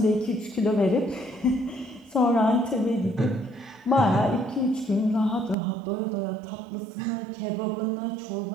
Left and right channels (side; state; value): left; drops out; at 5.6 s